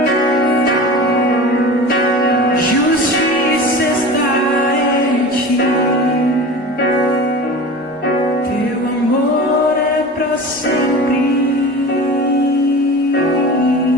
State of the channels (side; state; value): both; normal; correlation 0.34